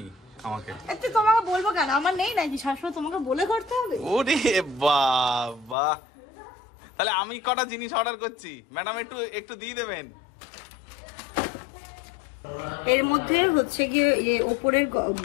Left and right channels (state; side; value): drops out; right; at 5.8 s